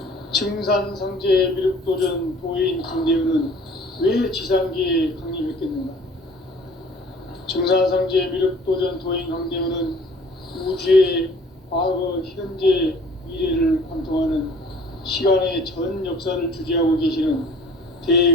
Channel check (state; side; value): normal; both; correlation 0.51